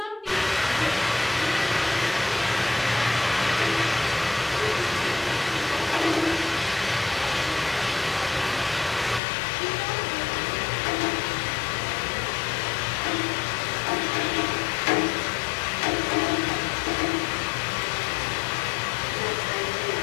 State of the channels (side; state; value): right; drops out; at 9.2 s